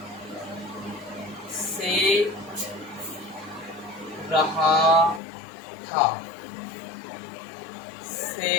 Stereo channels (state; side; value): drops out; right; at 5.2 s